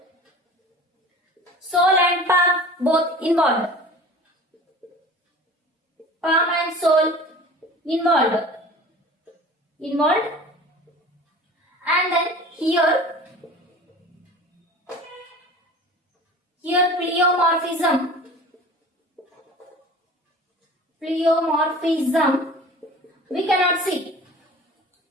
Sole and palm both involved. Palm and sole involved. And then here pleomorphism. Pleomorphism we cannot see.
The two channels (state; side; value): normal; both; correlation 0.41